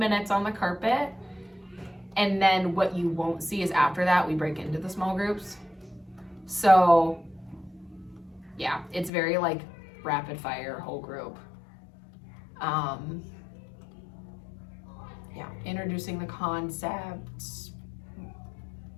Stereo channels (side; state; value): right; drops out; at 9.1 s